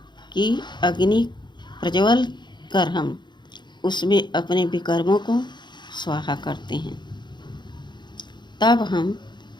की अग्नि प्रज्वल कर हम उसमें अपने विकर्मों को स्वाहा करते हैं। तब हम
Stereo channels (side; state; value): right; late; 0.22 ms